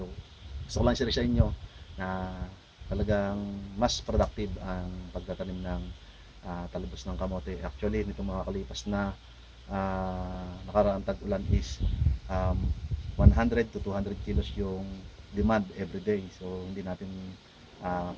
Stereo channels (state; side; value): identical; both; correlation 1.00